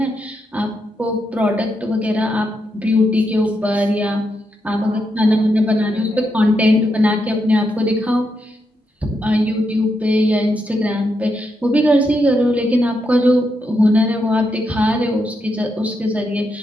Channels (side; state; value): both; normal; correlation 0.82